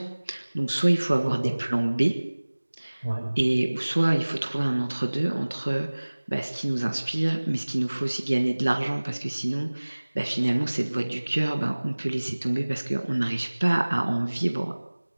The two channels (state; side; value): inverted; both; correlation -1.00